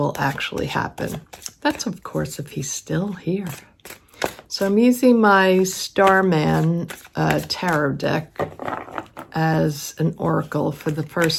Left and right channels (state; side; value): identical; both; correlation 1.00